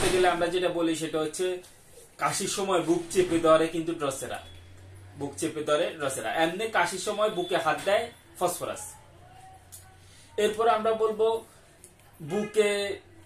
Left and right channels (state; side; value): identical; both; correlation 1.00